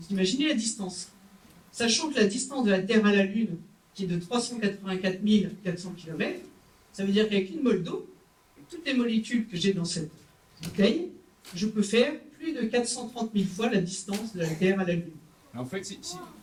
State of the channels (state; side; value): identical; both; correlation 1.00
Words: imaginez la distance. Sachant que la distance de la Terre à la Lune, qui est de 384 400 km, ça veut dire qu'avec une mole d'eau, toutes les molécules que j'ai dans cette bouteille, je peux faire plus de 430 000 fois la distance de la Terre à la Lune. En fait,